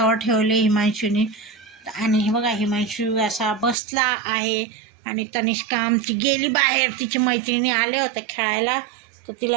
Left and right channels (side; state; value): left; drops out; at 3.8 s